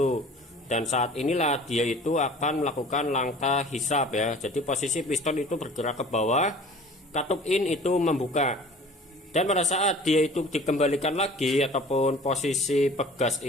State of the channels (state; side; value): normal; both; correlation 0.46